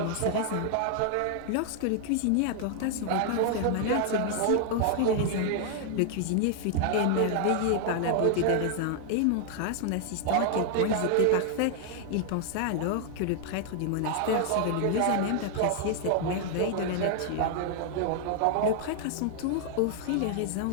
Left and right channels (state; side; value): different; both; correlation 0.00